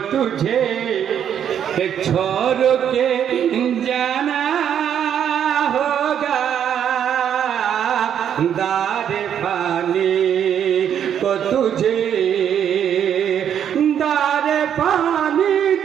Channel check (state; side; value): quieter; left; 9.1 dB